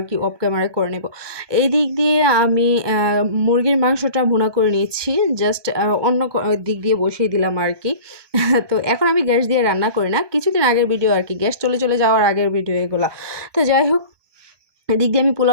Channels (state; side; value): late; left; 1.2 ms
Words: কি, অফ ক্যামেরায় করে নেব। এই দিক দিয়ে আমি মুরগির মাংসটা ভুনা করে নিচ্ছি, জাস্ট অন্য দিক দিয়ে বসিয়ে দিলাম আর কি। তো এখন আমি গ্যাস দিয়ে রান্না করি না, কিছুদিন আগের ভিডিও আর কি, গ্যাস চলে যাওয়ার আগের ভিডিও এগুলা। তো যাই হোক, এদিক দিয়ে আমি